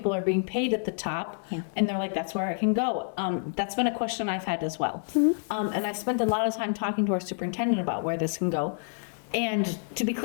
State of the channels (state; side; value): silent; right; 58 dB below the other